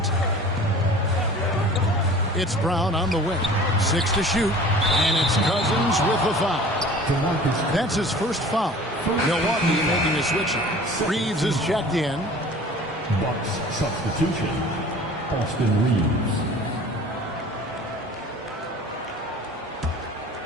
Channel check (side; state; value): both; normal; correlation 0.44